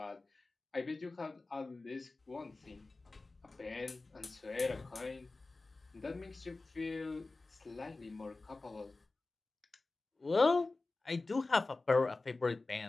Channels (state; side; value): quieter; right; 3.4 dB